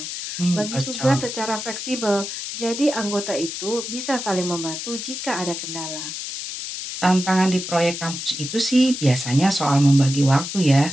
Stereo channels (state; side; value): noise; left; hiss, 7 dB below the sound